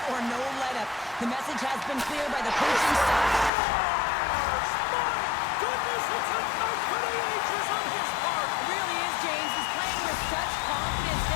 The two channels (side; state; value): right; drops out; at 3.5 s